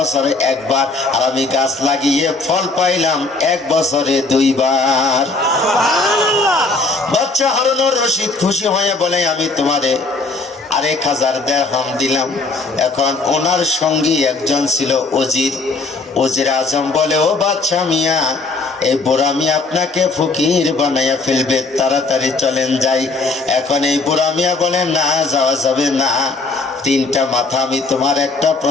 একবার, আর আমি গাছ লাগিয়ে ফল পাইলাম 1 বছরে 2 বার। বাদশা হারুনুর রশিদ খুশি হয়ে বলে, আমি তোমারে আর 1000 দিরহাম দিলাম। এখন ওনার সঙ্গী একজন ছিল ওজির আজম, বলে ও বাদশা মিয়া এই বুড়ামি আপনাকে ফকির বানাইয়া ফেলবে, তাড়াতাড়ি চলেন যাই। এখন এই বুড়ামিয়া বলে না, যাওয়া যাবে না। তিনটা মাথা, আমি তোমার একটা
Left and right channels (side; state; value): right; quieter; 3.6 dB